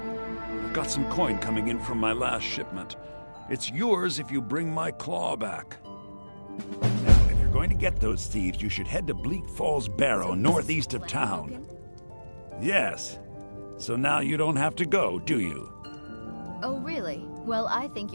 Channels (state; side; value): inverted; both; correlation -1.00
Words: got some coin coming in from my last shipment. It's yours if you bring my claw back. Now, if you're going to get those thieves, you should head to Bleak Falls Barrow, northeast of town. Yes. So now you don't have to go, do you? Oh, really? Well, I think